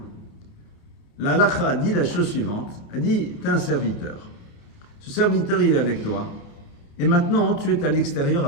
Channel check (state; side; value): late; right; 29 ms